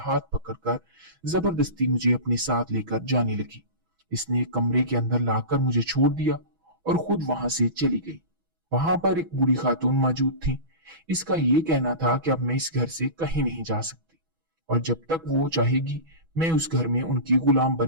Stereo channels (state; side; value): late; left; 6.1 ms